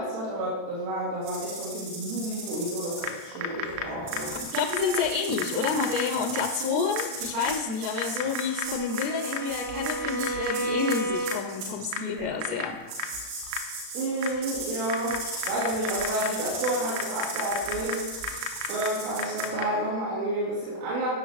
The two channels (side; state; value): left; late; 36 ms